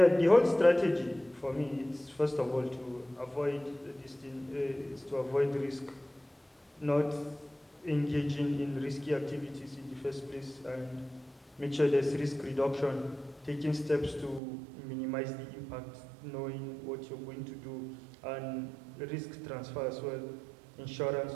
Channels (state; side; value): drops out; left; at 14.4 s